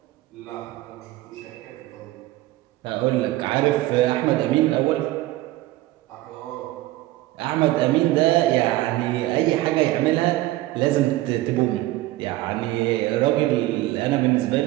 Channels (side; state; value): left; quieter; 17.1 dB